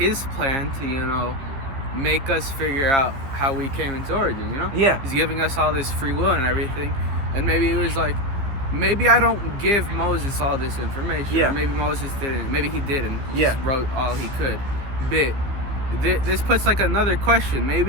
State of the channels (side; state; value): left; late; 15 ms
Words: plan to, you know, make us figure out how we came into origin, you know? Yeah. He's giving us all this free will and everything. And maybe it was like, maybe I don't give Moses all this information. Yeah. Or maybe Moses didn't. Maybe he didn't. He Yeah. just wrote all he could. But this puts like another question.